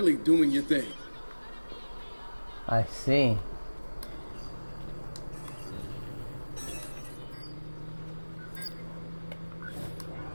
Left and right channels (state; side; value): inverted; both; correlation -1.00